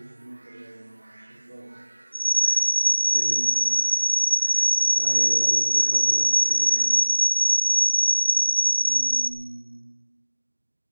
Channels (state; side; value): inverted; both; correlation -1.00